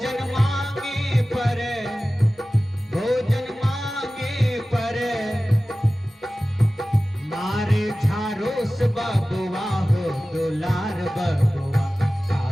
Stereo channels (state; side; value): normal; both; correlation 0.96